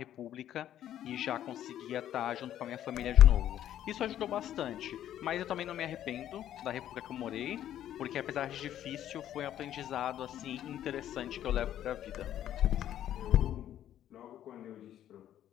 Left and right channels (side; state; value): right; quieter; 11.4 dB